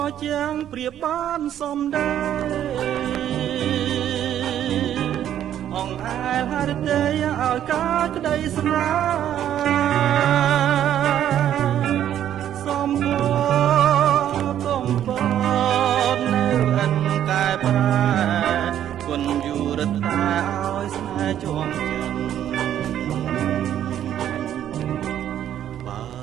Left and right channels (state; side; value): quieter; left; 10.8 dB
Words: ជាងព្រៀបបានសំដែងអងអែលហរិទេឲ្យការក្តីស្នេហ៍សំពកំពតនៅអិនកែប្រែគុណយូរតែឲ្យស្នេហ៍ជាប់ចិនបើ